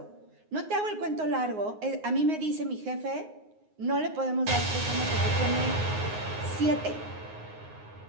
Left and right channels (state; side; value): late; left; 9.6 ms